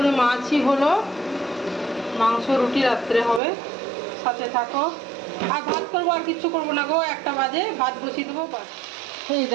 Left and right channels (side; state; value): left; drops out; at 3.4 s